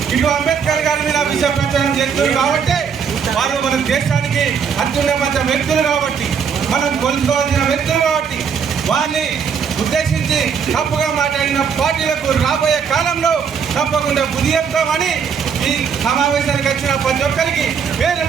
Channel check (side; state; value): left; quieter; 6.8 dB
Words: ఇటు అంబేద్కర్ గారి మీద విష ప్రచారం చేస్తున్నారు కాబట్టి వారు మన దేశానికి అత్యున్నత వ్యక్తులు కాబట్టి, మనం కొలుసుకోవాల్సిన వ్యక్తులు కాబట్టి వారిని ఉద్దేశించి తప్పుగా మాట్లాడిన పార్టీలకు రాబోయే కాలంలో తప్పకుండా బుద్ధి చెప్తామని ఈ సమావేశానికి వచ్చిన ప్రతి ఒక్కరికి పేరు